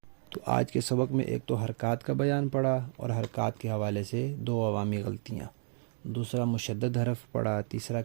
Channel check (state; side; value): silent; left; 57 dB below the other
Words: تو آج کے سبق میں ایک تو حرکات کا بیان پڑا اور حرکات کے حوالے سے 2 عوامی غلطیاں۔ دوسرا مشدد حرف پڑھا، تیسرا